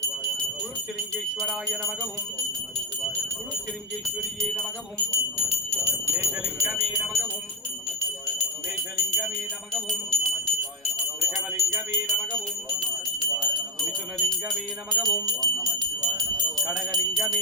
குருச்சிலிங்கேஸ்வராய நமகவும் குருச்சிலிங்கேஸ்வரியே நமகவும் மேஷலிங்கமே நமகவும் மேஷலிங்கமே நமகவும் ரிஷபலிங்கமே நமகவும் மிதுனலிங்கமே நமகவும்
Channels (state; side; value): normal; both; correlation 0.04